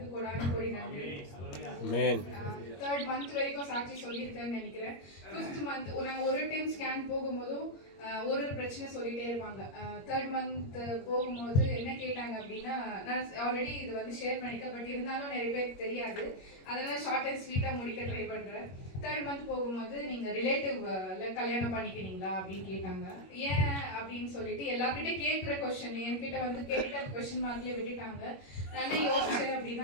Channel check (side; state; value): right; late; 21 ms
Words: கொடான கொடி நன்றி. 3rd மந்த் வரைக்கும் சாட்சி சொல்லியிருக்கேன்னு நினைக்கிறேன். 5th மந்த் நாங்கள் ஒரு டைம் ஸ்கேன் போகும்போதும் ஒரு பிரச்சனை சொல்லிகிட்டே இருப்பாங்க. 3rd மந்த் போகும்போது என்ன கேட்டாங்க அப்படின்னா, நான் ஆல்ரெடி இது வந்து ஷேர் பண்ணியிருக்கேன், பட் இருந்தாலும் நிறைய பேருக்கு தெரியாது, அதனால் ஷார்ட் அண்ட் ஸ்வீட்டாக முடிக்க ட்ரை பண்ணுறேன். 3rd மந்த் போகும்போது நீங்கள் ரிலேட்டிவ்ல கல்யாணம் பண்ணிக்கிறீங்களா அப்படின்னு கேட்டாங்க. ஏன் அப்படின்னு சொல்லிட்டு எல்லாருக்கிட்டே கேட்குற கொஸ்டின் என்கிட்ட வந்து கேட்ட கொஸ்டின் மார்க்லேயே விட்டுட்டாங்க. நான் யோசிச்சேன்